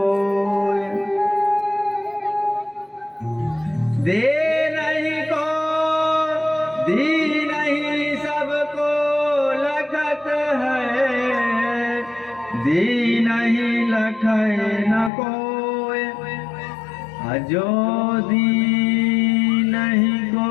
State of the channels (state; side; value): drops out; right; at 15.1 s